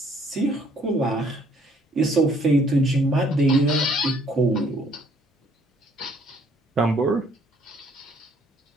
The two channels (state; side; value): normal; both; correlation 0.63